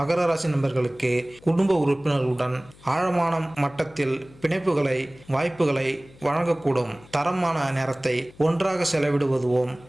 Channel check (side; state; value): left; noise; hum, 24 dB below the sound